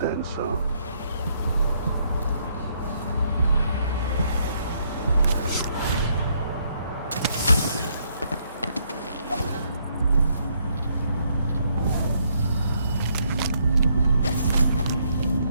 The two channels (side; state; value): both; inverted; correlation -0.72